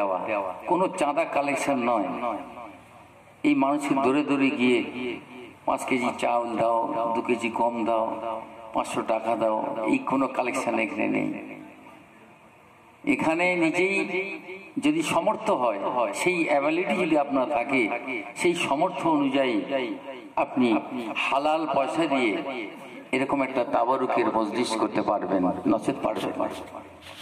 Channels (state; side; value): identical; both; correlation 1.00